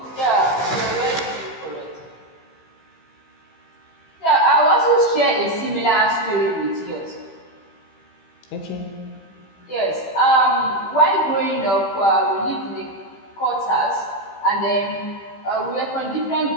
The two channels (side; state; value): right; late; 15 ms